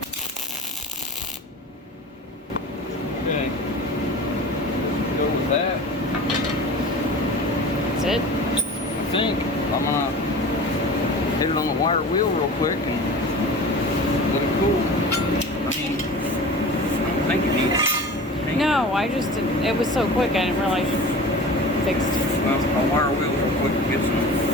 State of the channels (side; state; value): both; normal; correlation 0.37